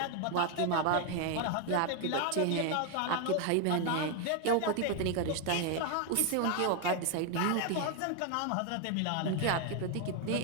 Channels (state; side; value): different; both; correlation 0.01